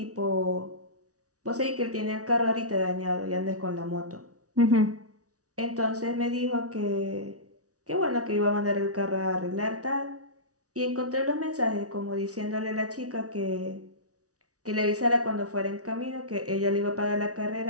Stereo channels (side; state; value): left; late; 0.67 ms